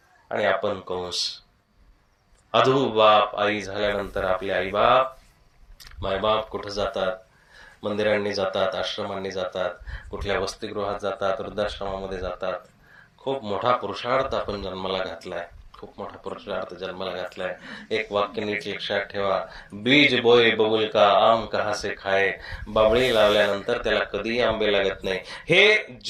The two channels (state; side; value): identical; both; correlation 1.00